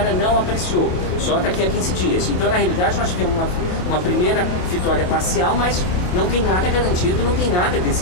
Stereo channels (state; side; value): late; right; 28 ms